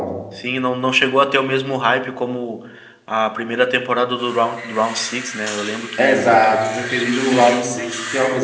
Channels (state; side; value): identical; both; correlation 1.00